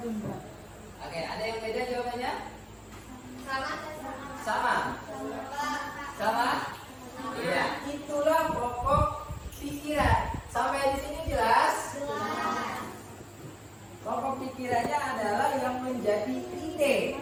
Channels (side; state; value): both; identical; correlation 1.00